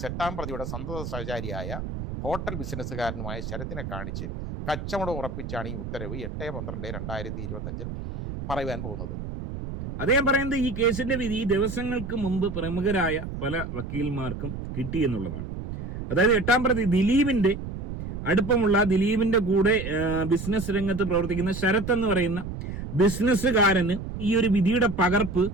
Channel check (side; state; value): right; noise; rumble, 7 dB below the sound